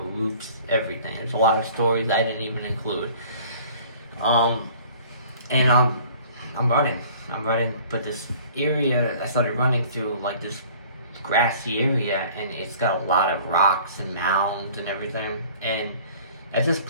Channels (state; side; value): inverted; both; correlation -0.50